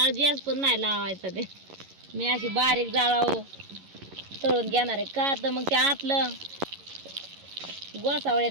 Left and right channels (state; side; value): late; left; 11 ms